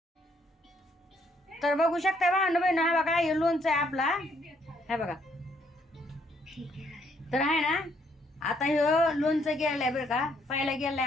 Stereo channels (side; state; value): both; normal; correlation 0.69